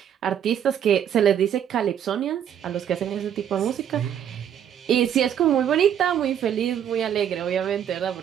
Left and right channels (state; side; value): quieter; left; 9.4 dB